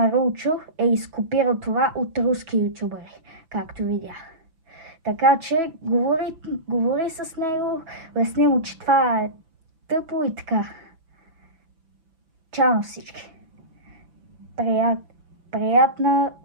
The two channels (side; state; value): left; late; 6.0 ms